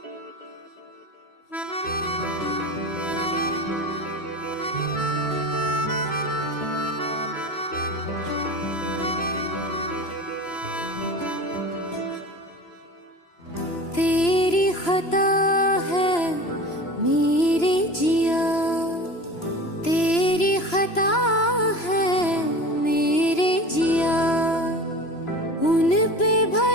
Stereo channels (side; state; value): right; late; 3.0 ms